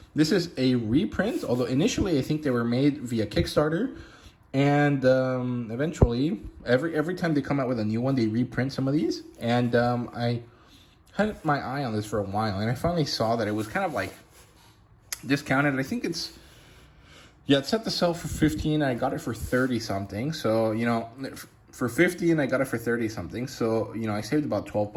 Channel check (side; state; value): both; identical; correlation 1.00